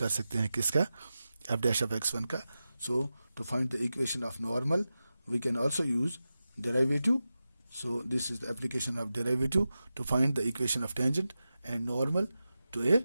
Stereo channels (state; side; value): inverted; both; correlation -0.93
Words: सकते हैं किसका? f डैश ऑफ x1 का. So to find the equation of normal we can also use derivative. So this is the application of derivative to find the equation of tangent and normal to a